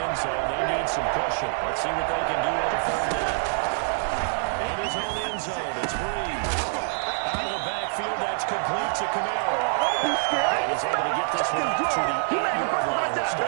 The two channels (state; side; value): silent; left; digital silence